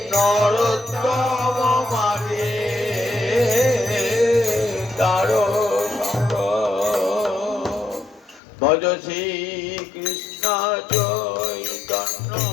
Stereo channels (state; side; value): drops out; right; at 8.4 s